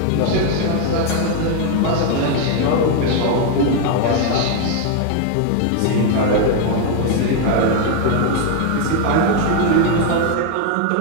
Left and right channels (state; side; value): different; both; correlation 0.01